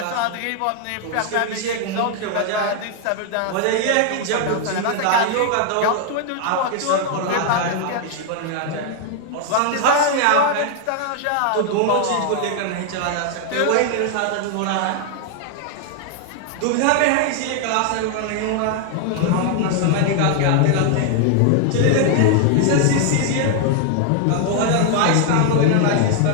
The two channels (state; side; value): different; both; correlation 0.00